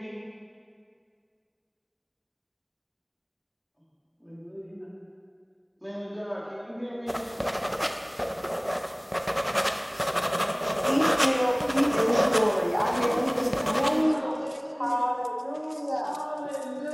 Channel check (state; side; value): identical; both; correlation 1.00